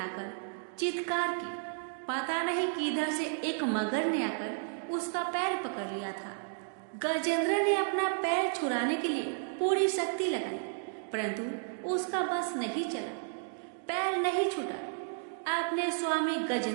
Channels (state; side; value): silent; left; digital silence